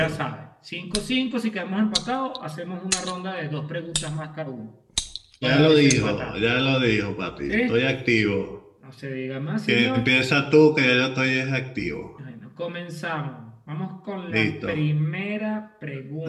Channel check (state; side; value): identical; both; correlation 1.00